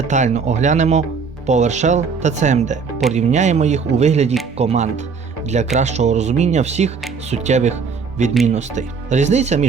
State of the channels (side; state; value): left; quieter; 5.4 dB